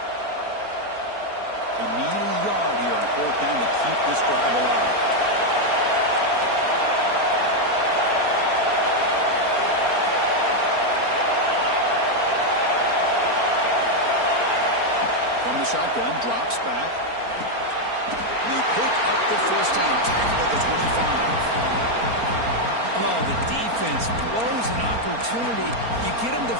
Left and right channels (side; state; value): left; late; 4.3 ms